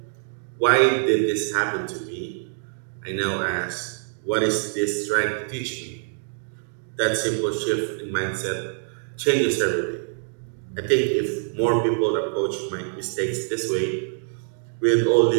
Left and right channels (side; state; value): left; silent; digital silence